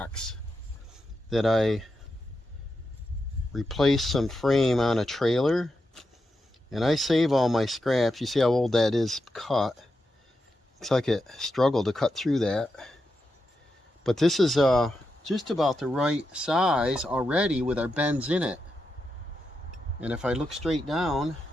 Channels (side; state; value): both; normal; correlation 0.87